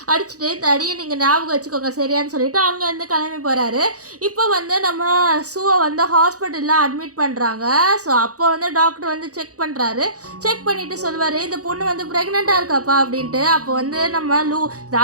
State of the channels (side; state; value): left; late; 0.66 ms